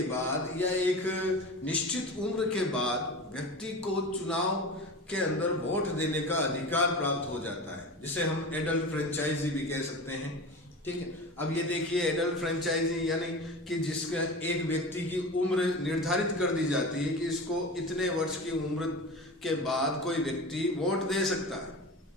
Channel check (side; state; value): both; normal; correlation 0.31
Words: बाद या एक निश्चित उम्र के बाद व्यक्ति को चुनाव के अंदर वोट देने का अधिकार प्राप्त हो जाता है, जिसे हम एडल्ट फ्रेंचाइजी भी कह सकते हैं। ठीक है, अब ये देखिए, एडल्ट फ्रेंचाइजी यानी कि जिसका एक व्यक्ति की उम्र निर्धारित कर दी जाती है कि इसको इतने वर्ष की उम्र के बाद कोई व्यक्ति वोट दे सकता है।